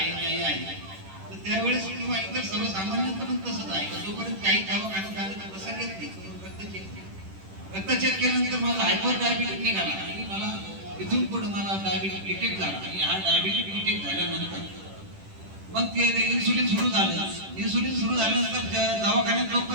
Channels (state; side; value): late; left; 10 ms